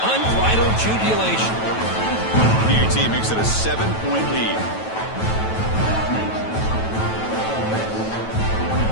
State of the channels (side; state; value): right; late; 9.2 ms